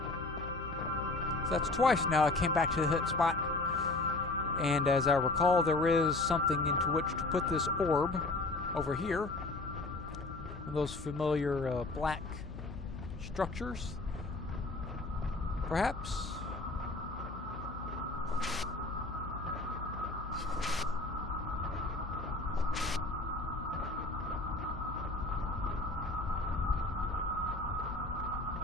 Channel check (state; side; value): quieter; right; 3.0 dB